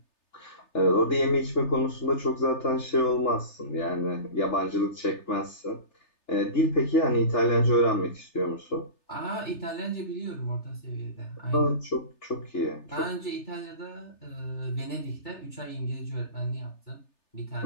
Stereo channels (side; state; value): right; late; 3.3 ms